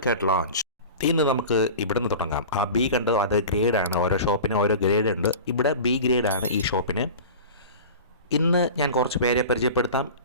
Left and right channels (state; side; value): inverted; both; correlation -0.35